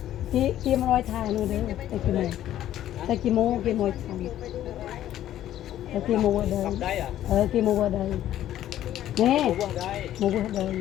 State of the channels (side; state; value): right; quieter; 12.4 dB